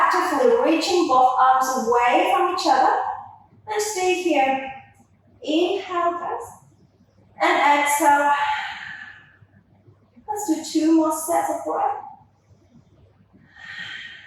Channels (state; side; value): identical; both; correlation 1.00